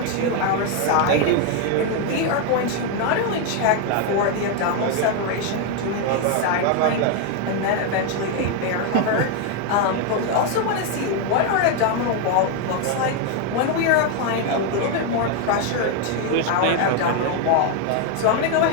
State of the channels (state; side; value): different; both; correlation 0.01